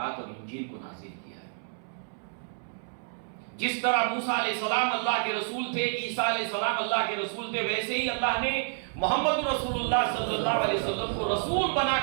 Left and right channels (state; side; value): silent; left; 58 dB below the other